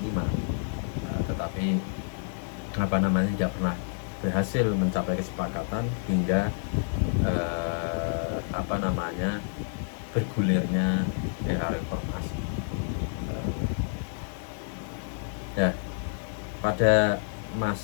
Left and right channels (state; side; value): silent; right; 59 dB below the other